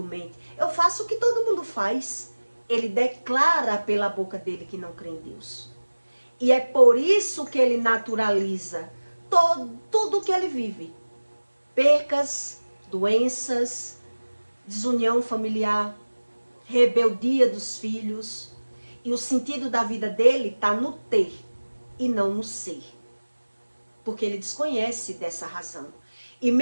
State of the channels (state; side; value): inverted; both; correlation -1.00